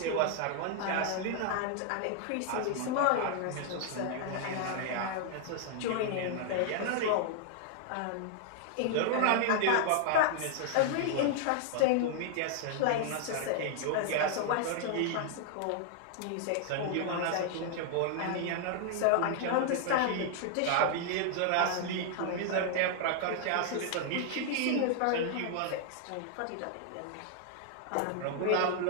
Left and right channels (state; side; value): different; both; correlation 0.00